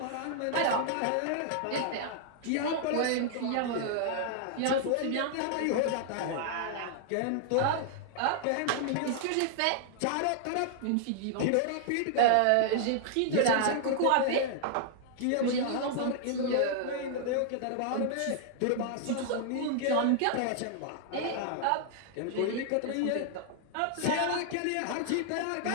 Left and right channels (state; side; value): different; both; correlation -0.01